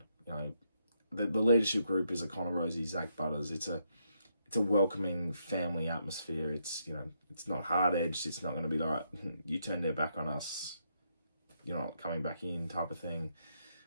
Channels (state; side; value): inverted; both; correlation -0.77